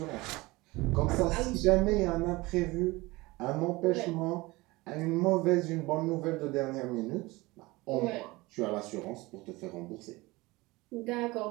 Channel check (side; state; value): left; quieter; 21.8 dB